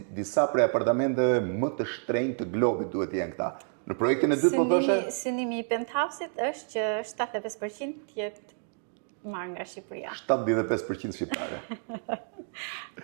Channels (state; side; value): silent; left; 55 dB below the other